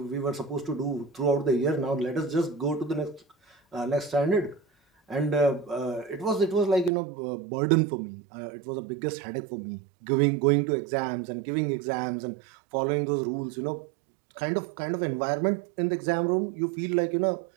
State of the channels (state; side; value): drops out; left; at 6.9 s